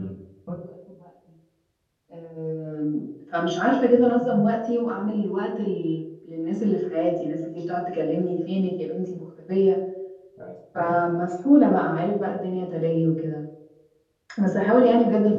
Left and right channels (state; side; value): identical; both; correlation 1.00